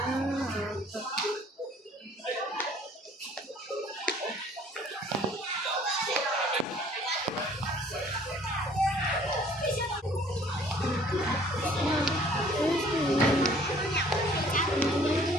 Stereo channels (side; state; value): both; normal; correlation 0.56